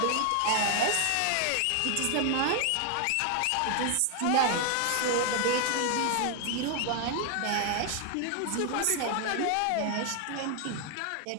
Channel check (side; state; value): both; different; correlation 0.00